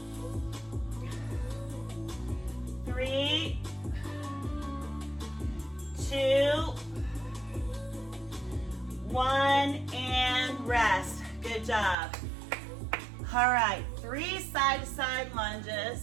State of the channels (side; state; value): left; drops out; at 12.0 s